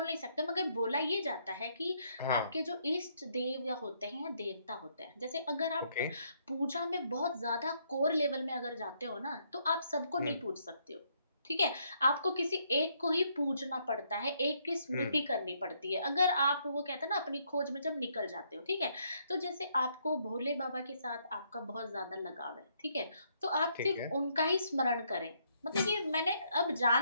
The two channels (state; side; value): inverted; both; correlation -0.72